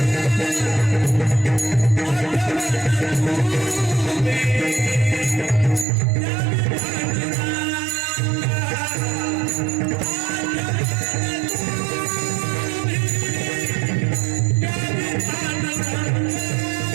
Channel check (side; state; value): left; drops out; at 5.9 s